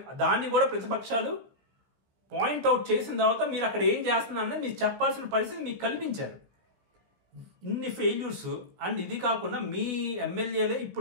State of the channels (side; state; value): left; late; 16 ms